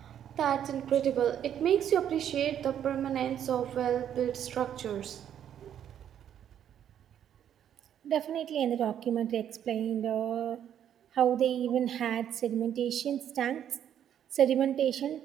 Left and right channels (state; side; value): quieter; left; 9.8 dB